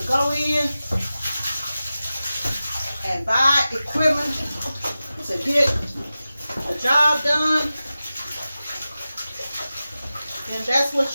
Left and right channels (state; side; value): inverted; both; correlation -0.95